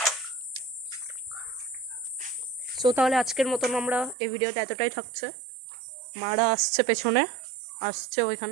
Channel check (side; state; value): left; drops out; at 4.2 s